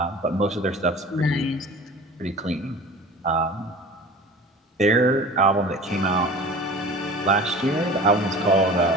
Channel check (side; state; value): both; normal; correlation 0.40